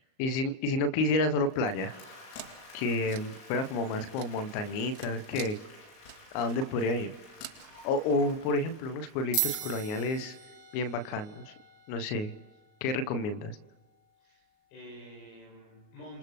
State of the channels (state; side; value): late; right; 38 ms